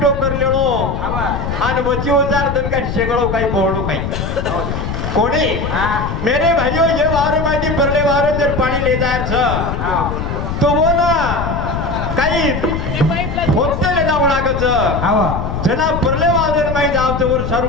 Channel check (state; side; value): noise; left; rumble, 4 dB below the sound